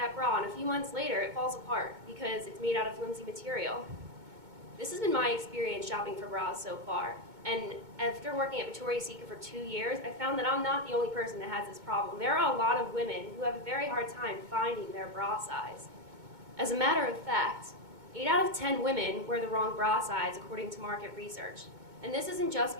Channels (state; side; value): late; left; 2.2 ms